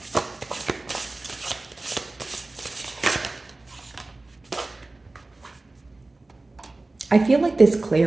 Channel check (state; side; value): quieter; left; 3.1 dB